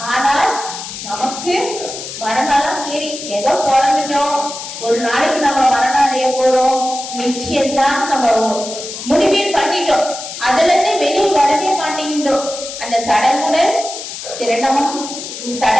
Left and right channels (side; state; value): left; noise; hiss, 9 dB below the sound